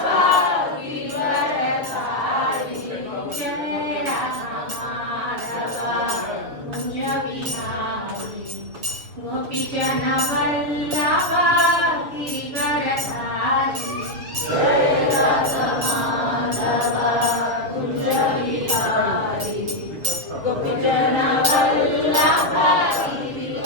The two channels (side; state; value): left; late; 7.0 ms